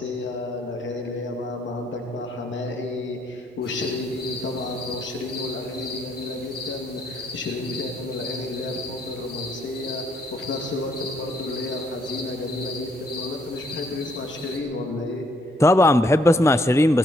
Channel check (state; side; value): normal; both; correlation 0.69